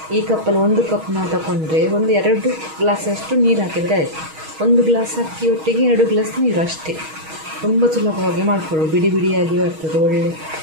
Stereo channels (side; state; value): left; late; 6.3 ms